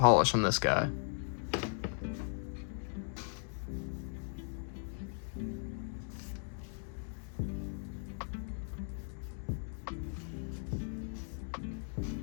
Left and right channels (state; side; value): silent; right; 53 dB below the other